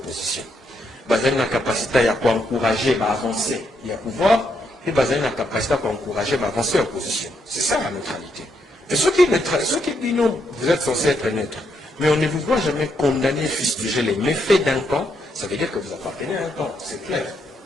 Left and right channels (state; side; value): normal; both; correlation 0.78